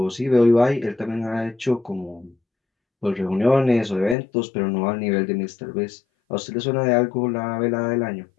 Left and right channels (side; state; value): right; drops out; at 4.2 s